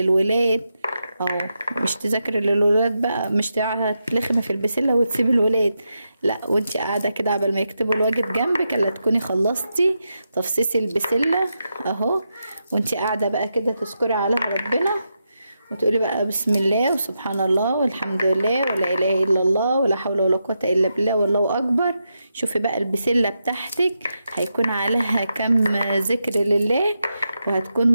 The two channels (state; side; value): inverted; both; correlation -0.86